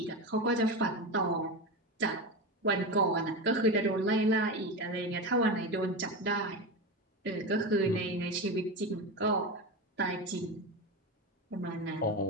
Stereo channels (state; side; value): normal; both; correlation 0.20